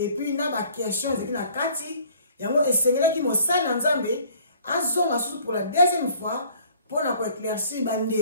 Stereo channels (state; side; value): inverted; both; correlation -0.55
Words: puis il y a des questions, il y a des Kati. Et c'est là qui m'a salué en Zambé, pour la deuxième fois, pour éclaircir